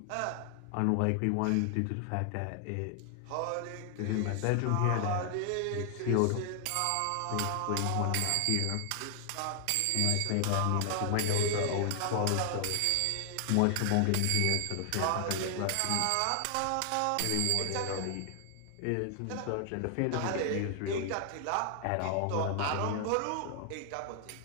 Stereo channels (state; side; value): different; both; correlation 0.00